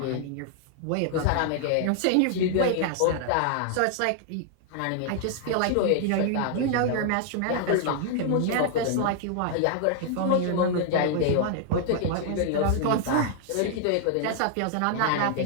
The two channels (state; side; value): different; both; correlation 0.00